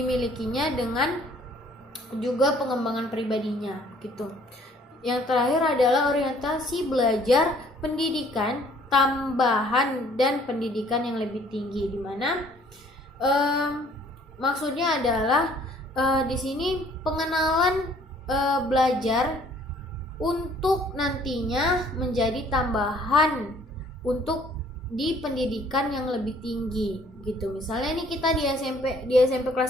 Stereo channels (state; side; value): normal; both; correlation 0.59